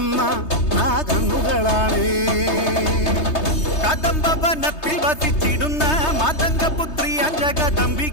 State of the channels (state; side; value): late; right; 3.2 ms